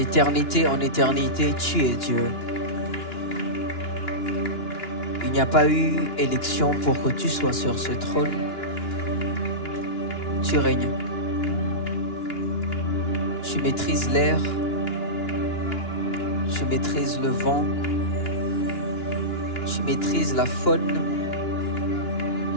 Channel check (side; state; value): right; late; 2.9 ms